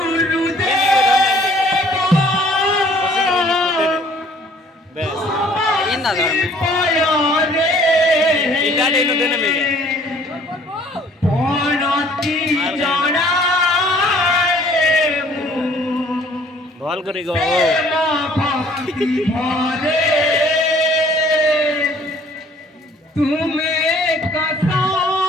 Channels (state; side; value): normal; both; correlation 0.57